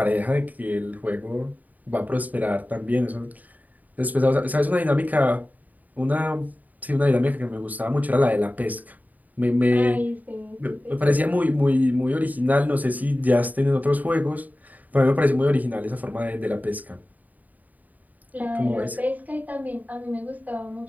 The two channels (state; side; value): late; left; 0.079 ms